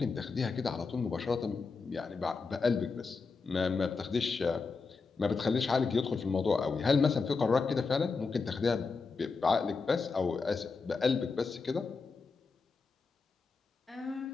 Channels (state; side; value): quieter; right; 4.6 dB